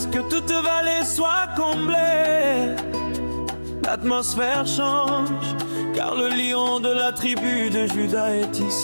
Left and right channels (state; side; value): inverted; both; correlation -1.00